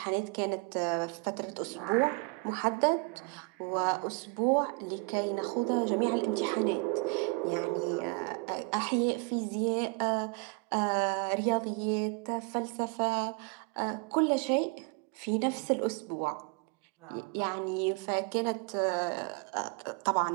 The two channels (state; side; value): quieter; left; 31.2 dB